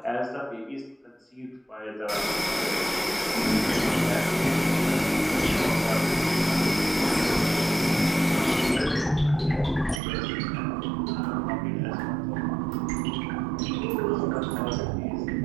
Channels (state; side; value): drops out; left; at 10.0 s